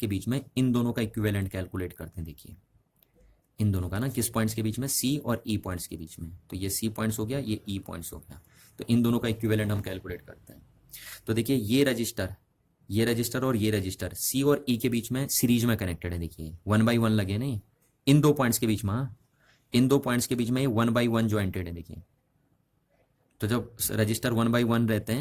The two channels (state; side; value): identical; both; correlation 1.00